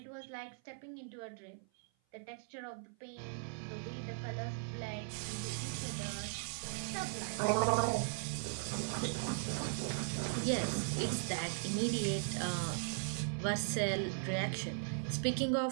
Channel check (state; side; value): silent; left; 52 dB below the other